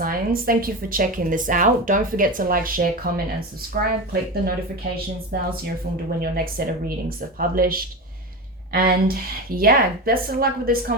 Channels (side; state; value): both; normal; correlation 0.22